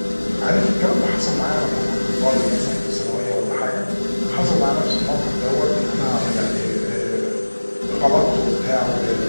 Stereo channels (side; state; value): both; inverted; correlation -1.00